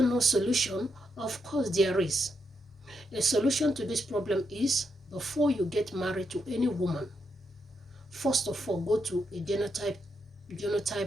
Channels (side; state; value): both; normal; correlation 0.81